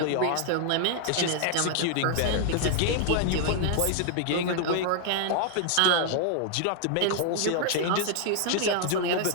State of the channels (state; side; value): different; both; correlation 0.00